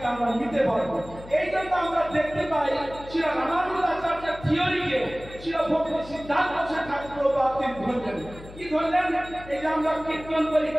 আমরা নিতে পারবো। এই জন্য আমরা দেখতে পাই শ্রী রামানুজ আচার্যের থিওরিকে শ্রী ভক্তি সিদ্ধান্ত ঠাকুর তিনি ধরলেন। কি ধরলেন? এই যে আমরা কীর্তন করি,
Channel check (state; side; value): noise; left; hum, 17 dB below the sound